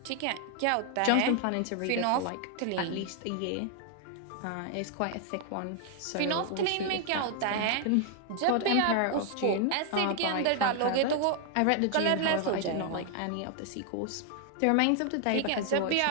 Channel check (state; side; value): different; both; correlation 0.00